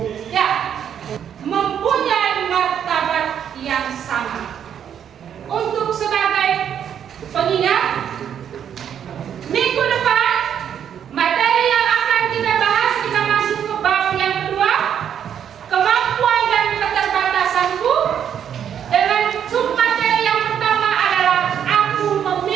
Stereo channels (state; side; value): quieter; left; 8.9 dB